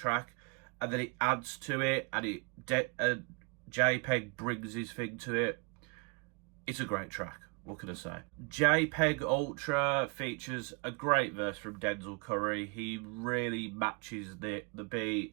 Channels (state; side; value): quieter; left; 33.4 dB